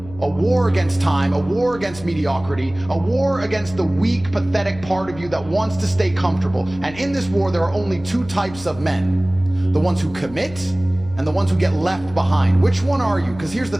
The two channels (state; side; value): noise; left; hum, 17 dB below the sound